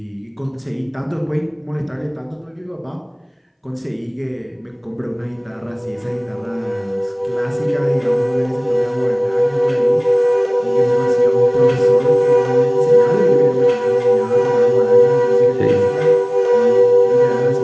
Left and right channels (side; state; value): both; identical; correlation 1.00